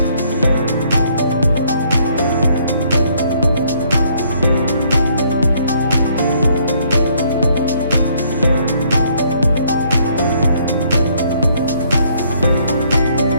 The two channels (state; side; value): inverted; both; correlation -0.66